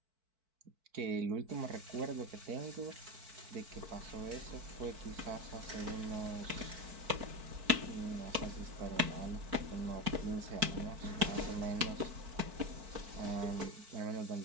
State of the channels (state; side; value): late; left; 4.5 ms